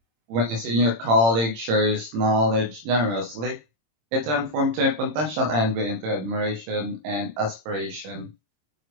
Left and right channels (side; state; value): left; late; 26 ms